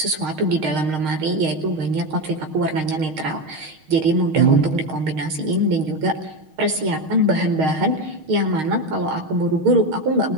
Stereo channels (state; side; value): late; left; 6.4 ms